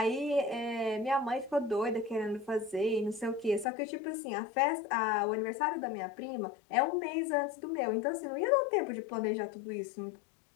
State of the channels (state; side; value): drops out; right; at 3.7 s